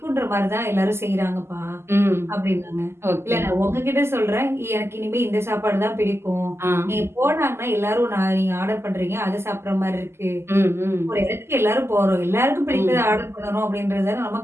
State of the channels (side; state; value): left; late; 0.12 ms